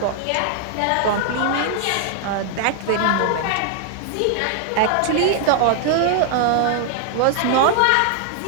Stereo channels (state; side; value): different; both; correlation 0.00